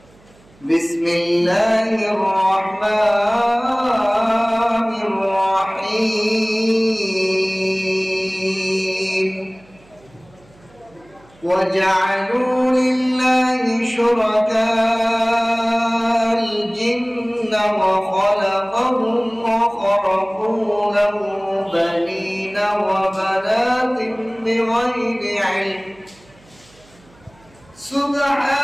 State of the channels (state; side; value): noise; right; hum, 29 dB below the sound